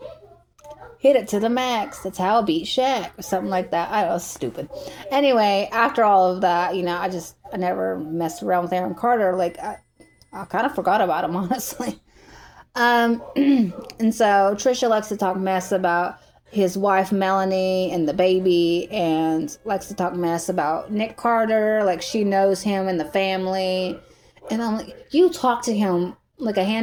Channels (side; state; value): both; identical; correlation 1.00